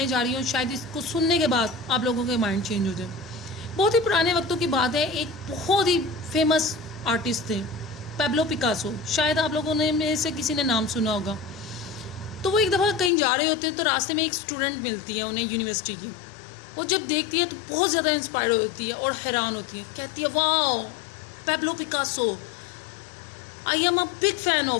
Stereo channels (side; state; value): right; drops out; at 13.1 s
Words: जा रही हूँ, शायद इसको सुनने के बाद आप लोगों के माइंड चेंज हो जाए। बहुत ही पुराने वक्तों की बात है, एक बहुत ही फेमस आर्टिस्ट थे पैब्लो पिकासो। शायद आप लोगों ने में से किसी ने नाम सुना होगा। तो वो एक दफ़ा कहीं जा रहे होते हैं तो रास्ते में एक स्टूडेंट मिलती है उन्हें, यूनिवर्सिटी की। वो जब देखती है तो बहुत ज़्यादा इंस्पायर होती है और हैरान होती है। कहती है, wow Pablo Picasso, I am a big fan